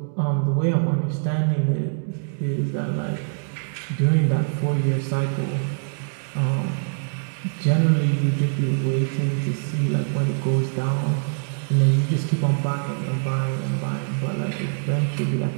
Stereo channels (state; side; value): silent; left; digital silence